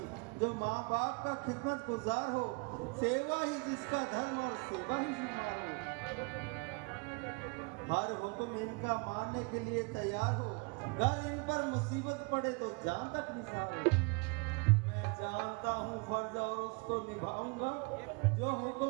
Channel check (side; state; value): left; quieter; 31.0 dB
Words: जो माँ बाप का खिदमत गुजार हो, सेवा ही जिसका धर्म और सेवा ही शुमार हो। हर हुक्म इनका मानने के लिए तैयार हो, अगर इन पर मुसीबत पड़े तो जान तक निसार हो। मैं जानता हूँ फर्ज और उसको निभाऊंगा, जो